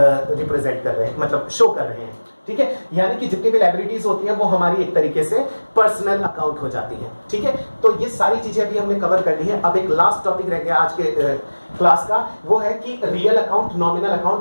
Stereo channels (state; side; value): inverted; both; correlation -1.00